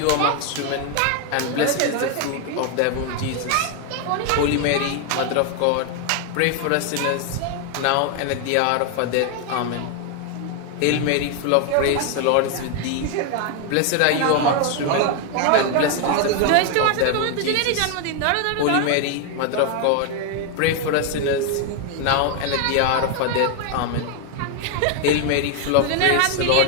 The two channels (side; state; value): both; different; correlation 0.01